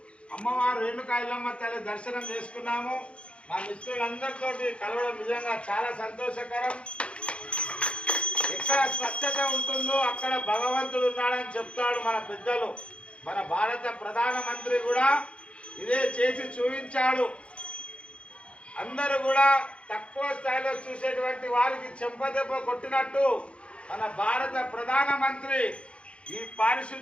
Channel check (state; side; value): late; right; 0.059 ms